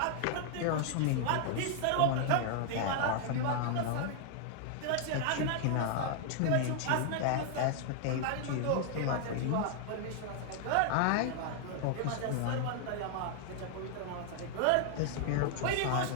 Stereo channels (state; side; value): different; both; correlation 0.00